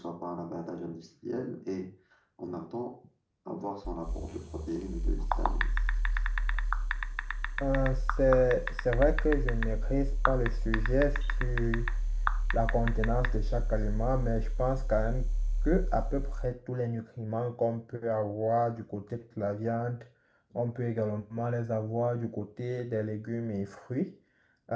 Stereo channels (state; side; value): identical; both; correlation 1.00